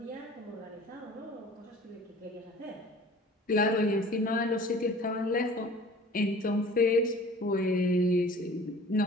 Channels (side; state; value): both; normal; correlation 0.46